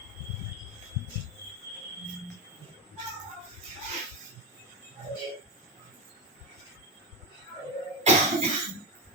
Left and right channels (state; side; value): normal; both; correlation 0.14